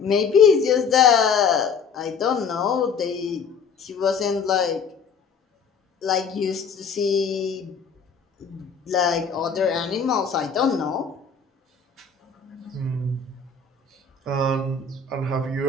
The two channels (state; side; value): quieter; right; 5.7 dB